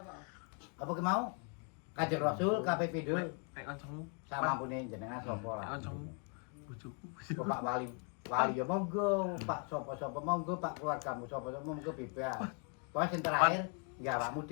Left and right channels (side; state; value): right; quieter; 39.5 dB